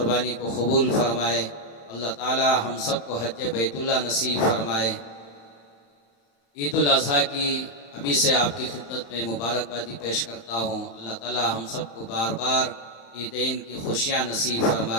को कबूल फरमाए। अल्लाह ताला हम सब को हज बैतुल्लाह नसीब फरमाए। ईदुल अज़हा की अभी से आपकी खिदमत में मुबारकबादी पेश करता हूँ। अल्लाह ताला हम सब को बार बार ईदैन की खुशियाँ नसीब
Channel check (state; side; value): late; right; 35 ms